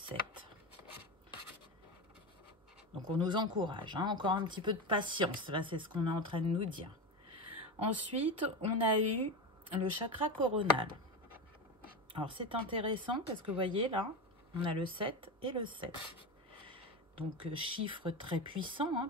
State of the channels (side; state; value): both; normal; correlation 0.20